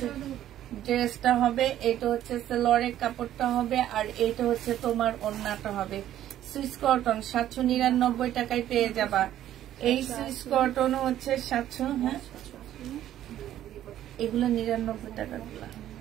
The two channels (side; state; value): left; quieter; 12.1 dB